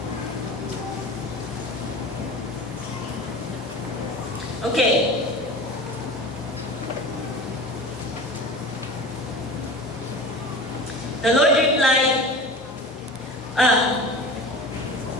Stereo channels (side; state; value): both; normal; correlation 0.34